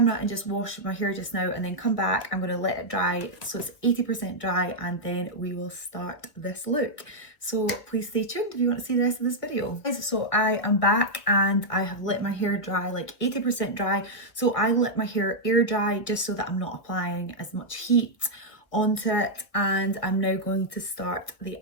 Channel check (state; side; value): late; right; 1.4 ms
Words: and just wash my hair just now and then come back. I'm going to let it dry so it's 80% dry, and then we will start this look. So please stay tuned if you want to see the rest of this video. So I am back and I have let my hair dry like 80% dry. So I let my hair air dry just so that I'm not applying as much heat onto it, and I'm now going to start the